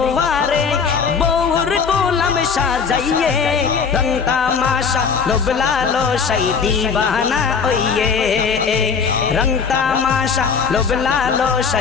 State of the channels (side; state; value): right; quieter; 5.9 dB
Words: বউর গোলাম সাজাইয়ে रंग तमाशा लोभ लालसाई दीवाना ओये रंग तमाशा लोभ